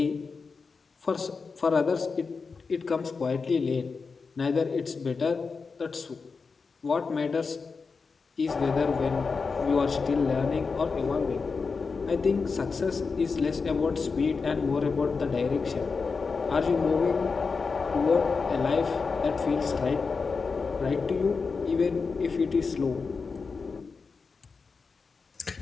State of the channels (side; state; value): right; quieter; 4.8 dB